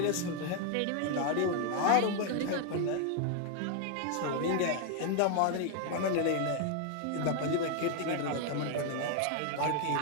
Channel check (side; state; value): both; different; correlation 0.01